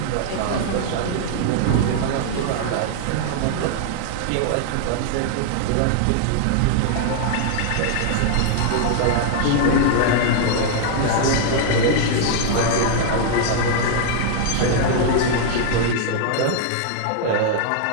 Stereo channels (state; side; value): different; both; correlation -0.01